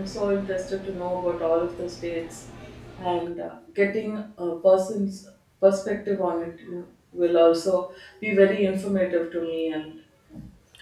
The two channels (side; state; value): both; identical; correlation 1.00